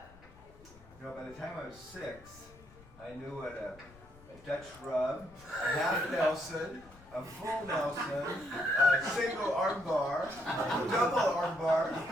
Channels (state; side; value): noise; left; rumble, 23 dB below the sound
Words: And by the time I was 6, I knew what a Dutch rub, a half Nelson, a full Nelson, a single arm bar, double arm bar.